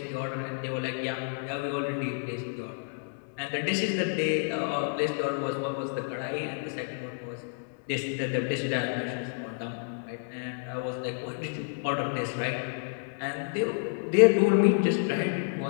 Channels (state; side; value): silent; right; digital silence